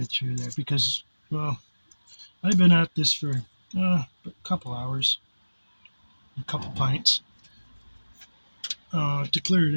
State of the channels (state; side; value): inverted; both; correlation -1.00